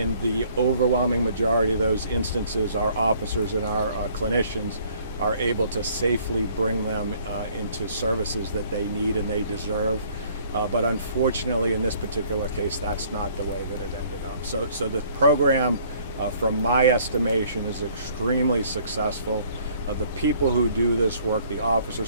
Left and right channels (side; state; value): both; inverted; correlation -0.59